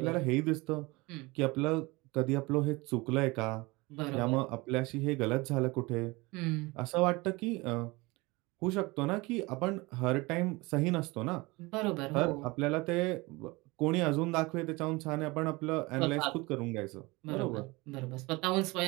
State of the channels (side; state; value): left; quieter; 23.6 dB